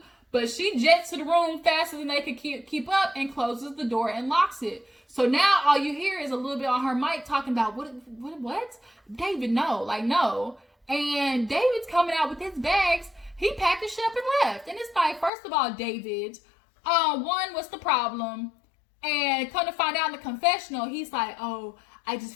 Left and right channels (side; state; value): right; drops out; at 15.3 s